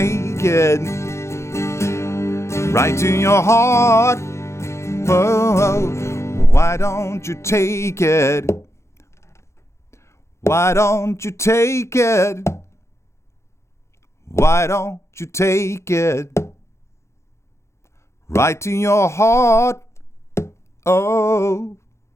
it right to your heart? Oh, why don't you take it? Why don't you take it? Why don't you take it right to your heart? Oh.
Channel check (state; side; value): late; right; 0.13 ms